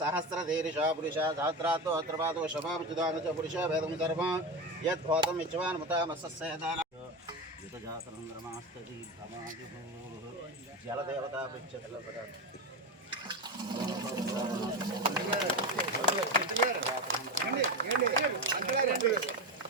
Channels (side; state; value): both; normal; correlation 0.18